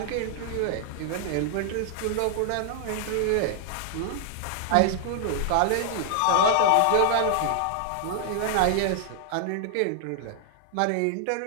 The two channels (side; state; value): both; different; correlation 0.00